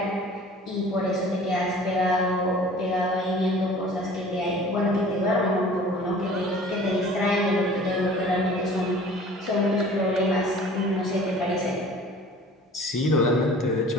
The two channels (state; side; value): normal; both; correlation 0.46